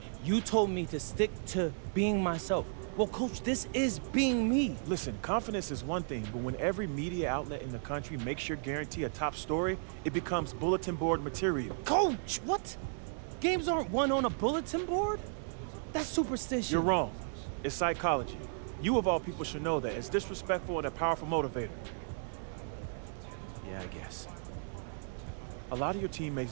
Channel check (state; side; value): silent; left; digital silence